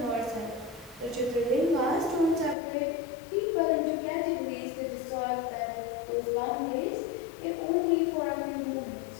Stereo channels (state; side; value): drops out; right; at 2.6 s